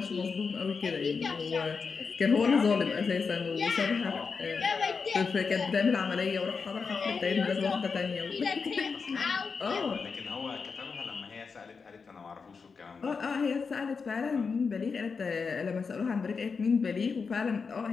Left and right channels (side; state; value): right; quieter; 5.2 dB